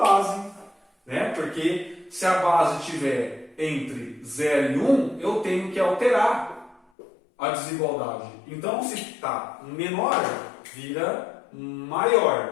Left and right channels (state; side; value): drops out; right; at 6.8 s